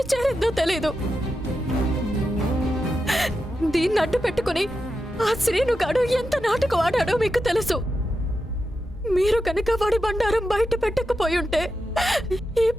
చేరిందో తెలీదు. దీన్ని అడ్డు పెట్టుకుని ఆ శ్రీనుగాడు ఎంత నాటకం ఆడాడో మీకు తెలుసు. మీరు కనుక వాడి బండారం బయట పెట్టకపోయి ఉంటే ఈ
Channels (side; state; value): both; normal; correlation 0.88